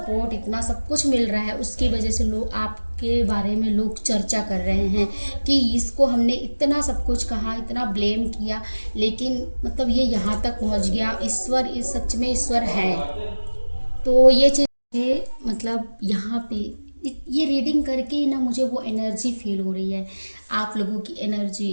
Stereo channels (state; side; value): inverted; both; correlation -1.00